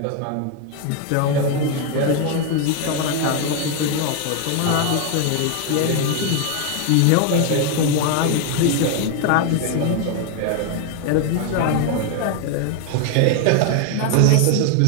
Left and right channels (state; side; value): different; both; correlation 0.01